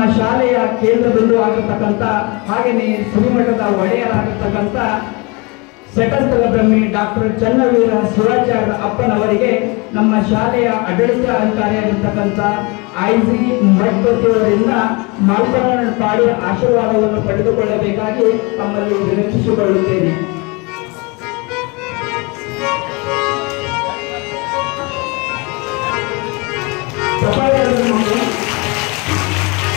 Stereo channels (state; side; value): quieter; right; 28.1 dB